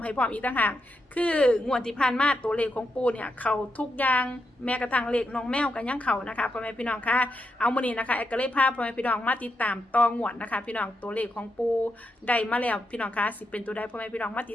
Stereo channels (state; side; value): normal; both; correlation 0.84